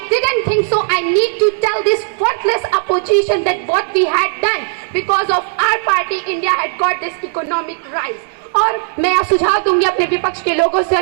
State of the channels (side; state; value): left; silent; 69 dB below the other